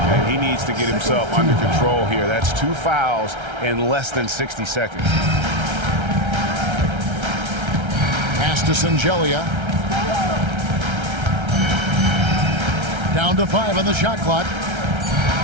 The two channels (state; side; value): late; left; 1.3 ms